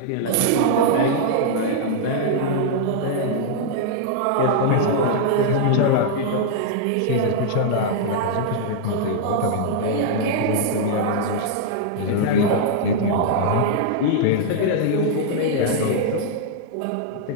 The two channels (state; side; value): different; both; correlation -0.01